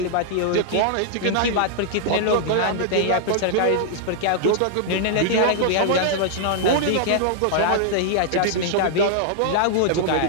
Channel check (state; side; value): different; both; correlation -0.01